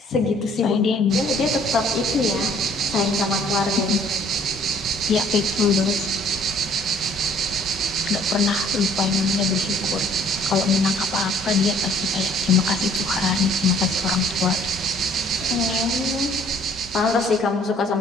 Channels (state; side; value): normal; both; correlation 0.58